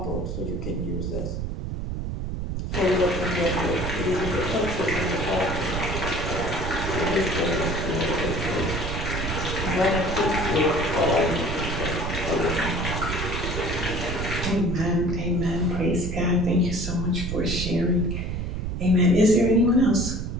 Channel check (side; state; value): right; noise; rumble, 4 dB below the sound